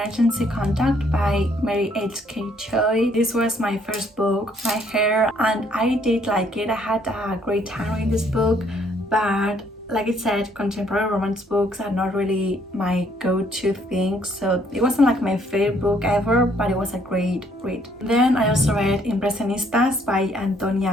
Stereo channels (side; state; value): both; normal; correlation 0.66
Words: Contact by Mary H.K. Choi. This was my first book, tahereh, and I did like it. I had a great time reading this book, but like I said, contemporary romance books are not really my go-to thing, so it wasn't like my favorite book ever, but it was a great read. Then I also read Impresionistas by